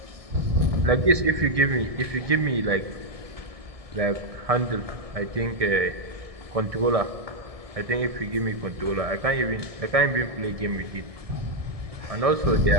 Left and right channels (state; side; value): late; left; 1.7 ms